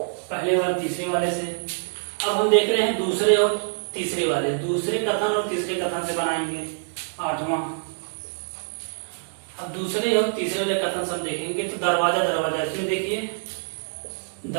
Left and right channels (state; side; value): silent; left; digital silence